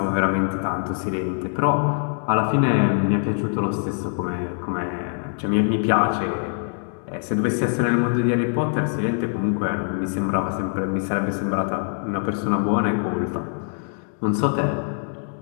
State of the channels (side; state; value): right; silent; 56 dB below the other